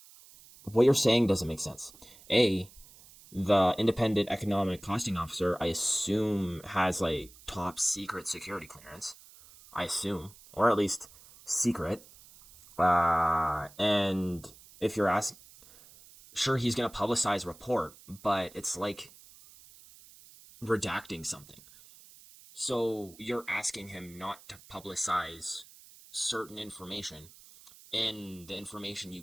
What you're saying doesn't make sense. A, the Independent Economic Costing Officer, I assume, has like top secret security clearance. I assume, or at least secret. And if you're asking, sure, he's going to publicize a report, but it's like redacting something. So you're asking him not to publicize certain information in the information you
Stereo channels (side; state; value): right; noise; hiss, 22 dB below the sound